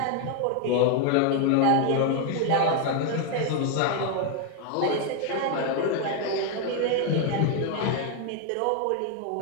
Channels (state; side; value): different; both; correlation 0.01